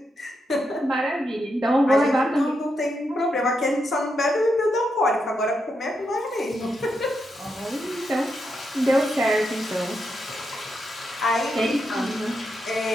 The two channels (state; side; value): normal; both; correlation 0.83